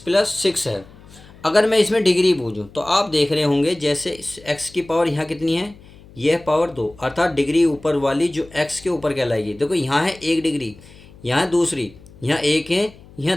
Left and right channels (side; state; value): left; noise; hum, 22 dB below the sound